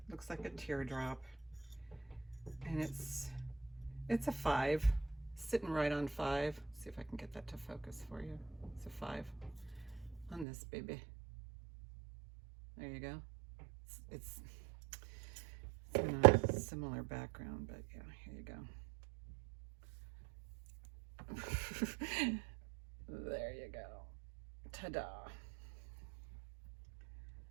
looks like a teardrop. And it's a 5, sitting right on 5. See if I can get that to focus for you. It's a 5 on this baby. There you go. It's in a similar background, but yeah, here you go. There you go. Ta-da.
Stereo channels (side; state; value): left; drops out; at 10.5 s